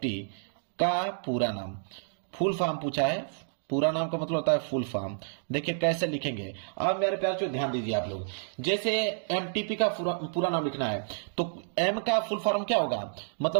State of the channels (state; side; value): silent; left; digital silence